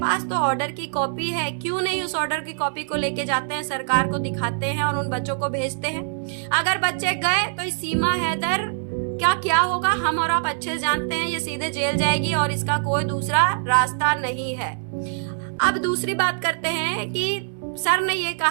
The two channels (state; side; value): silent; left; digital silence